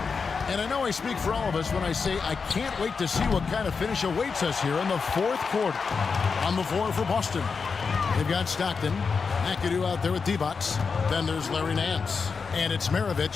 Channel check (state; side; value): quieter; right; 5.2 dB